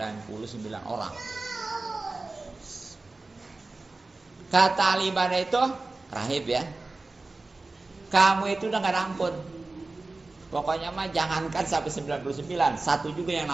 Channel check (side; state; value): left; quieter; 3.4 dB